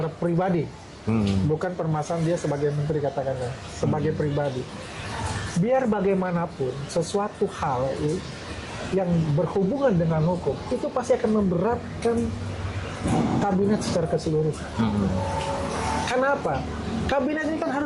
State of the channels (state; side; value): identical; both; correlation 1.00